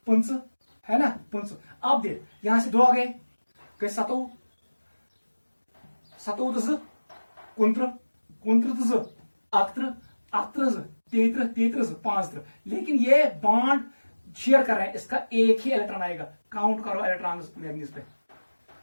5 है ना, 5। अब देख यहां से 2 आ गए, 7 33 5। लेकिन ये बॉन्ड शेयर कर रहे हैं, इसका एक ही इलेक्ट्रॉन आएगा। काउंट करो इलेक्ट्रॉन मैग्नीज पे।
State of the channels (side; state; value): both; inverted; correlation -1.00